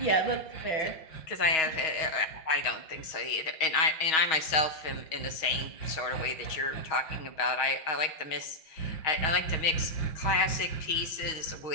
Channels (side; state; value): right; late; 6.3 ms